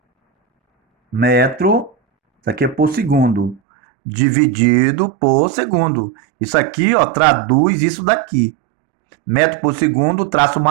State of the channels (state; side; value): drops out; left; at 3.6 s